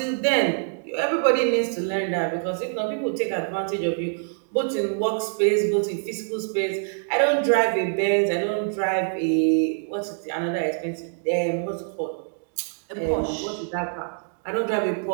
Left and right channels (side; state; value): left; silent; 62 dB below the other